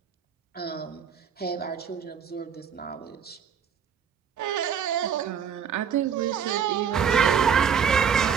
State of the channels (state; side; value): quieter; left; 7.3 dB